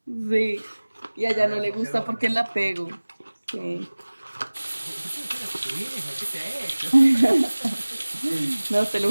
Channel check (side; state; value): both; inverted; correlation -1.00